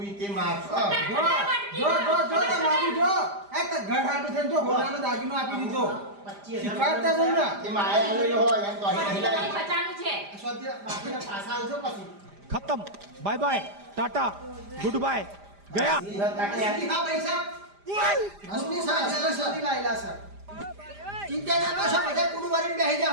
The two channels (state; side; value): late; left; 5.0 ms